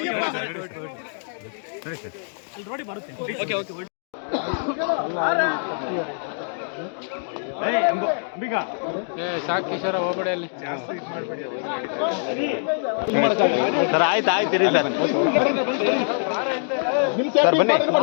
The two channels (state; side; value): silent; right; digital silence